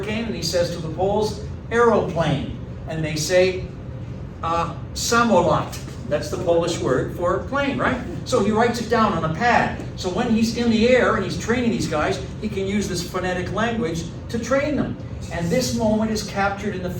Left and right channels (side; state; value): both; identical; correlation 1.00